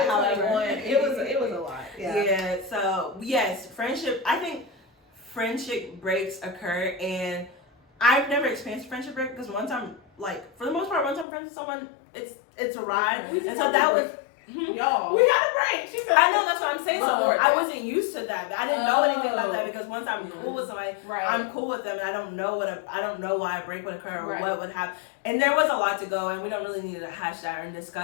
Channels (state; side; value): drops out; right; at 11.2 s